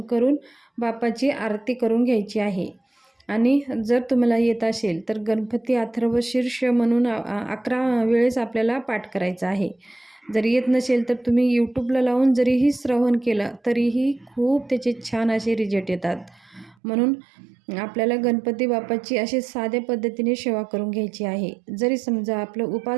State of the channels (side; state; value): left; drops out; at 16.8 s